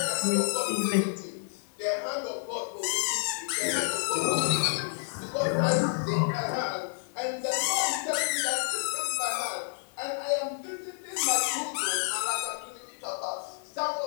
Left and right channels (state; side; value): silent; right; digital silence